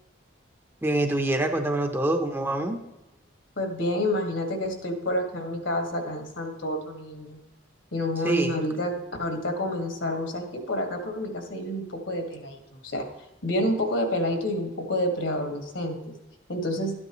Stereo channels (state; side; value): normal; both; correlation 0.27